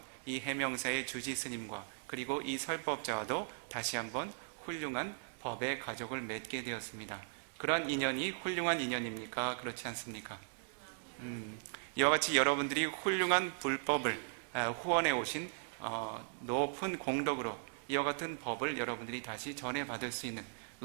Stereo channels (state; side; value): silent; left; digital silence